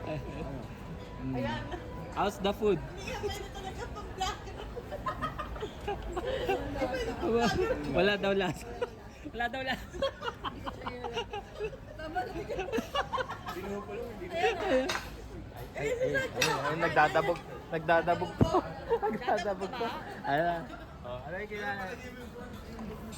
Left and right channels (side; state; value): both; identical; correlation 1.00